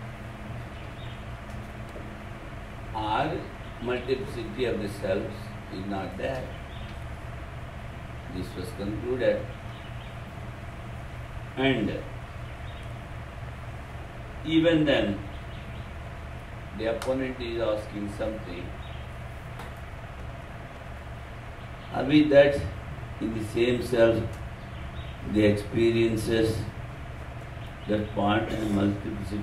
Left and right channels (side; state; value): both; identical; correlation 1.00